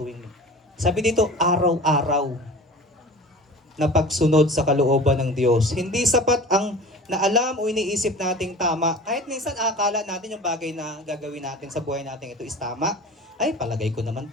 Sabi dito, araw-araw na pagsunod sa kalooban ng Diyos. Hindi sapat ang naalam o iniisip nating tama. Kahit minsan akala natin yung bagay na gagawin natin sa buhay natin ito is tama. Ay, palagay ko naman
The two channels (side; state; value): both; normal; correlation 0.39